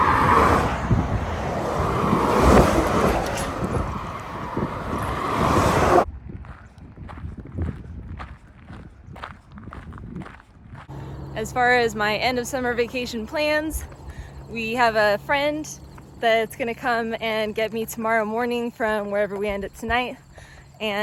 As far as my end of summer vacation plans, we have a friend that's gonna come and get me tomorrow morning from wherever we end up tonight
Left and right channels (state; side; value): identical; both; correlation 1.00